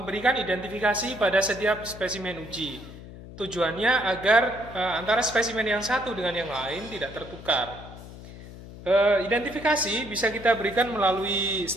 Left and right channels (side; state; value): left; noise; hum, 15 dB below the sound